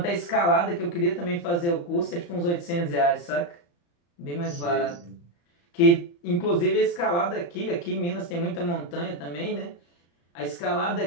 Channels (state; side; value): late; right; 35 ms